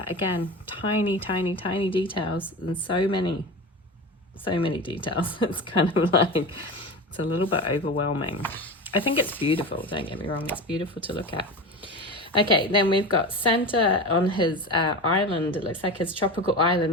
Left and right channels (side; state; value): both; normal; correlation 0.27